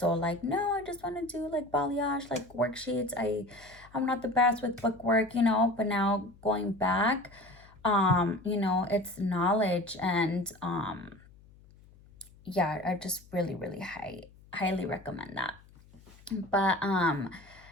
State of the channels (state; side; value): noise; left; hum, 25 dB below the sound